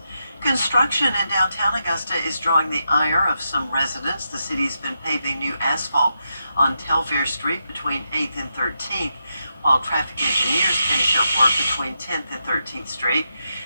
Construction in downtown Augusta is drawing the ire of some residents. The city's been paving new asphalt on Telfair Street between 8th and 13th, while traffic engineers finish up work between 10th and 13th Street.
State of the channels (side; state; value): both; inverted; correlation -0.84